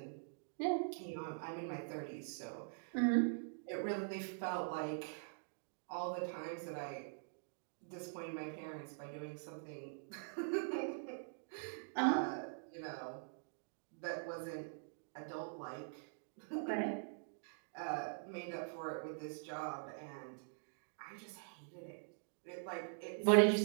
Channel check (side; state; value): left; silent; digital silence